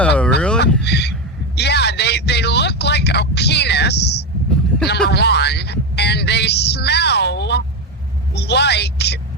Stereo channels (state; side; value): normal; both; correlation 0.13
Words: really? Yeah, they look like a penis, number one, and they smell like